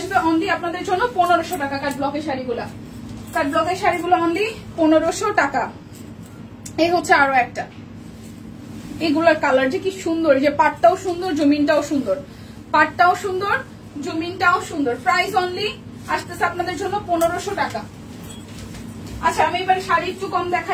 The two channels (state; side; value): identical; both; correlation 1.00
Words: অনলি আপনাদের জন্য 1500 টাকা। কাট ব্লকের শাড়িগুলা, কাট ব্লকের শাড়িগুলো অনলি 1500 টাকা। এই হচ্ছে আরো একটা, এগুলার কালার যে কি সুন্দর, যে পাটটাও সুন্দর, জমিনটাও সুন্দর, পাটটাও সুন্দর, জমিনটাও সুন্দর। প্রাইস অনলি আসতেছে আপনাদের জন্য 1500 টাকা। আচ্ছা আমি এবার শাড়ি একটু কম